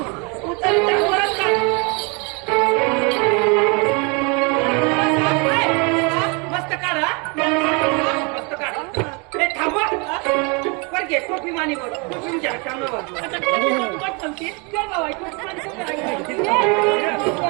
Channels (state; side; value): quieter; left; 31.8 dB